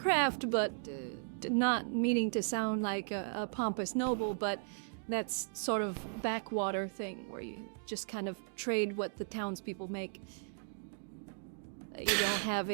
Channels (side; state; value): left; silent; digital silence